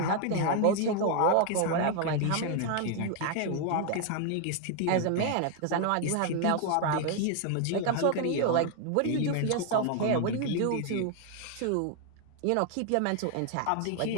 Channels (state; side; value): different; both; correlation 0.00